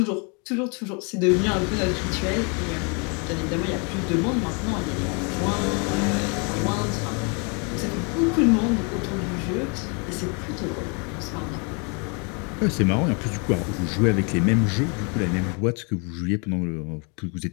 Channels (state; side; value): quieter; right; 34.9 dB